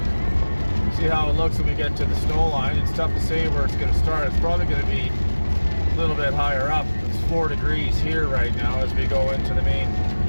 See how it looks when we get to the snow line. It's tough to say where it's going to start. It's probably going to be a little bit higher up. It's 4 degrees here right now as we go into the main.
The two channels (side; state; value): both; inverted; correlation -1.00